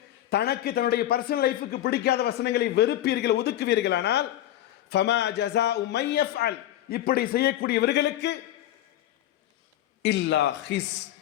தனக்கு தன்னுடைய பர்சனல் லைஃபுக்கு பிடிக்காத வசனங்களை வெறுப்பீர்கள், ஒதுக்குவீர்களானால் ஃபமா ஜஸாஉ மன் யஃஅல், இப்படி செய்யக்கூடியவர்களுக்கு இல்லா ஹிஸ்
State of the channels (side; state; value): right; quieter; 13.1 dB